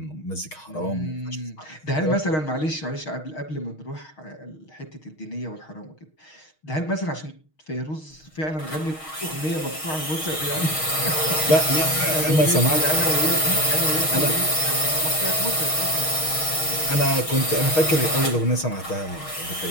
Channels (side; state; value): right; late; 6.4 ms